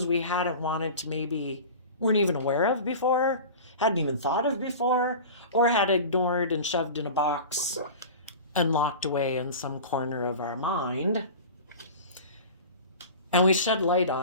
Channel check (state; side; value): inverted; both; correlation -0.35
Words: we hadn't wanted to, maybe weren't even aware of before, hadn't even thought of before, or had ignored and shoved in a box and locked away in some corner of our mind. And we shed light